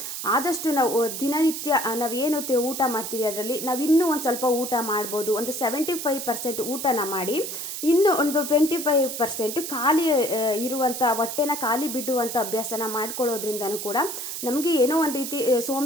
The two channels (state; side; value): noise; right; hiss, 6 dB below the sound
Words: ಆದಷ್ಟು ನಾವು ದಿನನಿತ್ಯ ನಾವೇನು ಊಟ ಮಾಡ್ತೀವಿ ಅದರಲ್ಲಿ ನಾವು ಇನ್ನೂ ಒಂದು ಸ್ವಲ್ಪ ಊಟ ಮಾಡ್ಬೋದು. ಒಂದು 75% ಊಟನ ಮಾಡಿ, ಇನ್ನು ಒಂದು 25% ಖಾಲಿ ಇರುವಂಥ ಹೊಟ್ಟೆನ ಖಾಲಿ ಬಿಡುವಂಥ ಅಭ್ಯಾಸನ ಮಾಡ್ಕೊಳ್ಳೋದ್ರಿಂದನೂ ಕೂಡ ನಮಗೆ ಏನೋ ಒಂದು ರೀತಿ